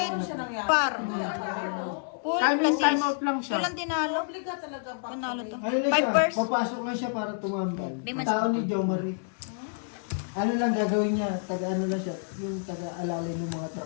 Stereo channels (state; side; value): silent; right; digital silence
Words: par. Full Time in, plus time out lang siya. Ito lang tinalo. Obliga talaga pa. Panalo to. Ano lang 5 siya, pairs. papasok lang siya para tumambal. Di man- Tao ni Jo Marie. Ano lang gagawin niya, taga ano lang siya, yung taga-alalay ng mga